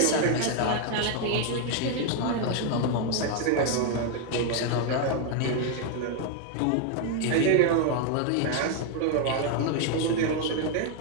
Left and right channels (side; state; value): both; different; correlation 0.00